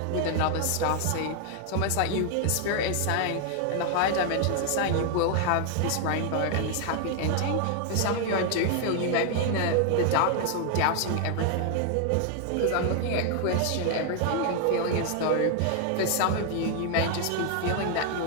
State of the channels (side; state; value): both; different; correlation 0.00